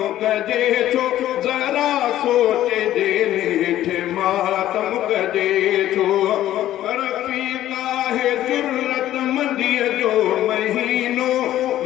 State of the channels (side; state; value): right; quieter; 13.1 dB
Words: कजे छो ज़रा सोचजे नेठ मातम कजे छो रफ़ीक़ा है जुर्रत मंदीअ जो महीनो